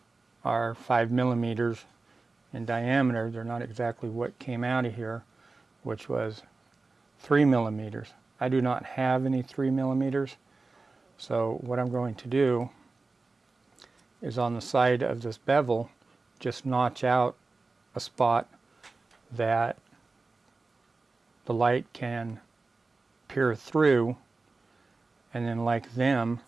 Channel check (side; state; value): left; quieter; 3.7 dB